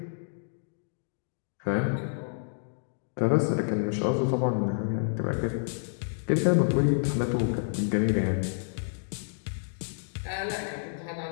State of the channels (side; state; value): right; silent; digital silence